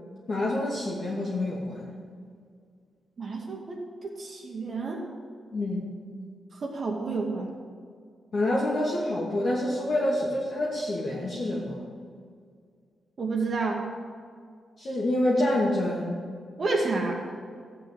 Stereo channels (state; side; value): normal; both; correlation 0.84